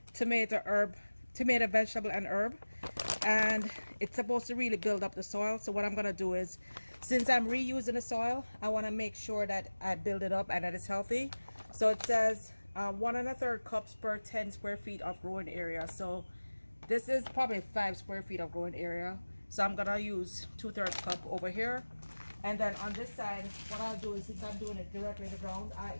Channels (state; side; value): inverted; both; correlation -1.00